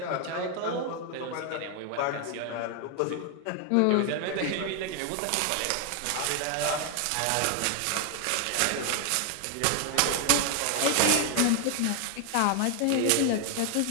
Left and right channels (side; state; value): both; different; correlation 0.00